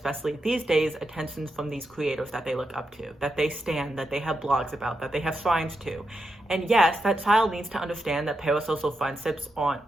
these days, attention from these creators that they look up to, that they stan, that they have blogs about, that they have shrines to. And yes, that child needs to understand that parasocial friendships aren't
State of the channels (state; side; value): normal; both; correlation 0.86